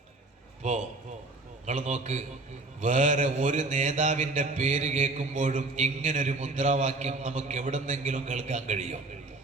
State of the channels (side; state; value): left; quieter; 3.2 dB